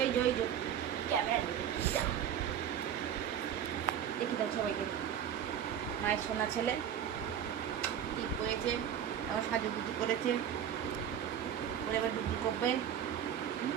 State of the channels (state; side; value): quieter; left; 9.3 dB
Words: ওই যে ওই যে ক্যামেরা দেখি দাও সবাইকে। মায়ের সোনা ছেলে ঠিক হয়েছে, এবার সাজুগুজু করেছে, ওরে এবার ডুবু করবে।